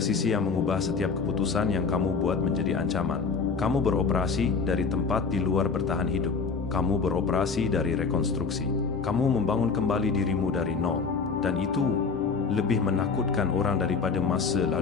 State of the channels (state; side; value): quieter; right; 5.0 dB